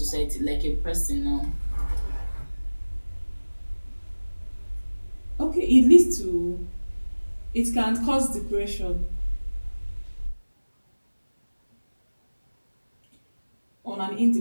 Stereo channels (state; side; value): inverted; both; correlation -1.00